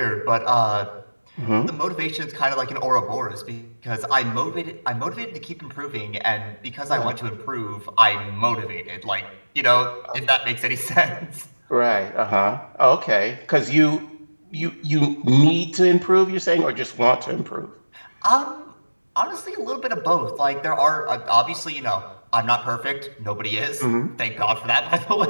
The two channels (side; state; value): both; inverted; correlation -1.00